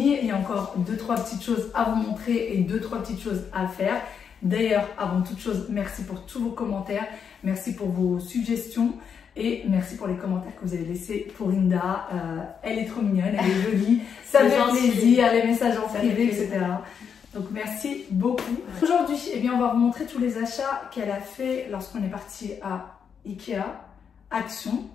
il y a encore 2-3 petites choses à vous montrer et 2-3 petites choses à faire. D'ailleurs, avant toute chose, merci pour tous vos commentaires, merci pour vos suggestions et merci pour les commentaires que vous avez laissés pour Inda. Elle est trop mignonne, elle est jolie, ça fait plaisir, les messages en privé, etc. Donc merci beaucoup. Aujourd'hui, eh bien, on va vous montrer tous les achats qu'elle a fait lorsqu'on est parti à Ikea, Action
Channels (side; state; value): right; quieter; 7.1 dB